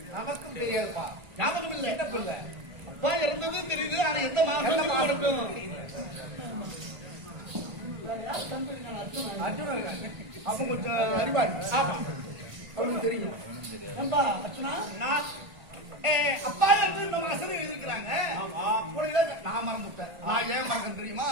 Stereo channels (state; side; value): late; left; 1.5 ms